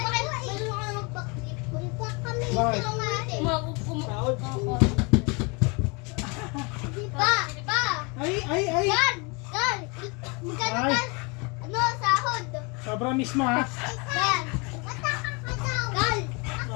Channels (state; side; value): quieter; right; 30.4 dB